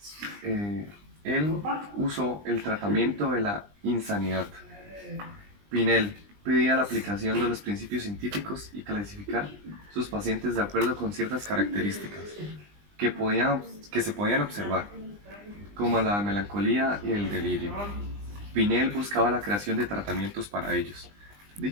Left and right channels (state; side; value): late; left; 20 ms